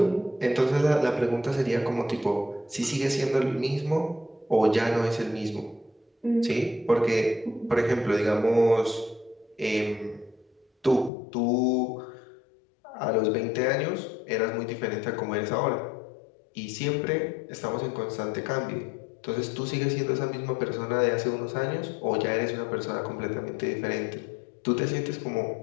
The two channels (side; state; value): right; drops out; at 11.1 s